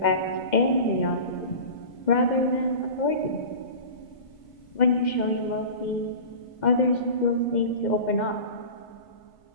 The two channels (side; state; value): right; late; 2.1 ms